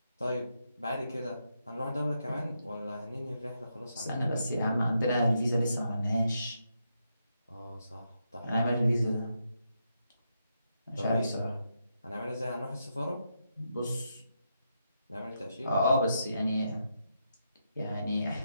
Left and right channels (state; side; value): inverted; both; correlation -0.82